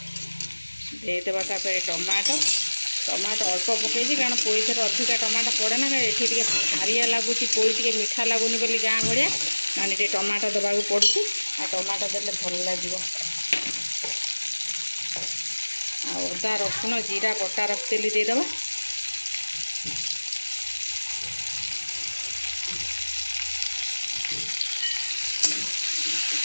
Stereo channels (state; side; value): inverted; both; correlation -1.00